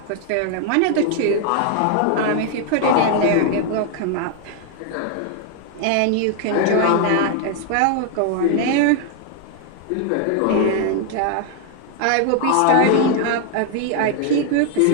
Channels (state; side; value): different; both; correlation 0.00